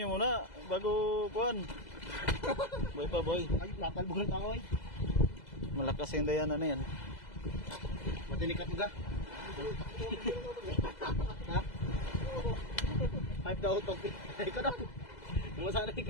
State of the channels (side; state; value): right; late; 2.0 ms